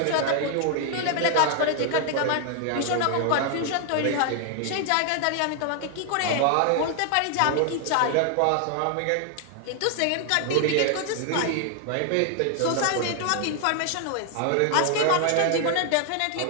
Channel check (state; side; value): different; both; correlation 0.00